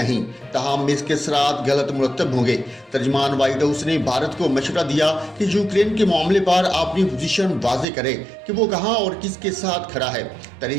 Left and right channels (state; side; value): drops out; left; at 7.9 s